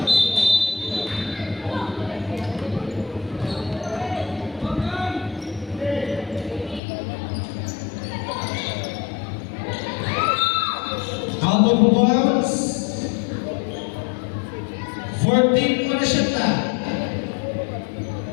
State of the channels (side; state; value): right; drops out; at 6.8 s